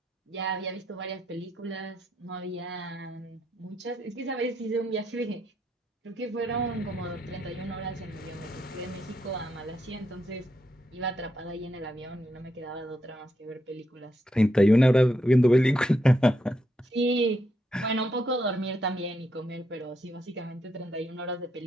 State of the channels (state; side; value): normal; both; correlation 0.80